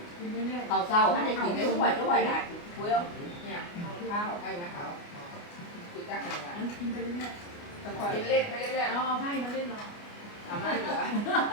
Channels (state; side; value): late; right; 29 ms